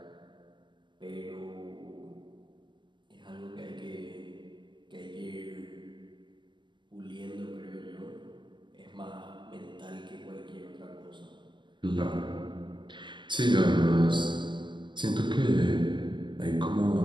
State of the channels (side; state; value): left; late; 0.23 ms